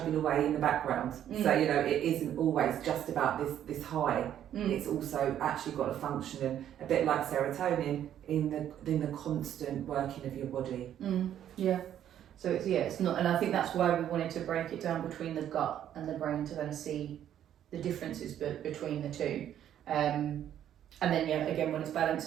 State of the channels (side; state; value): left; quieter; 10.6 dB